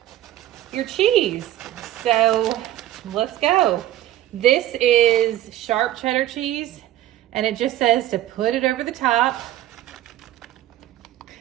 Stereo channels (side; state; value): left; quieter; 13.6 dB